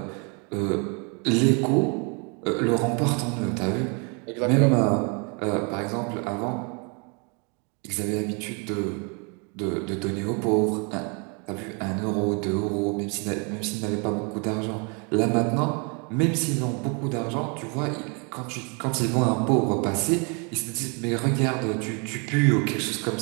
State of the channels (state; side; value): quieter; left; 34.7 dB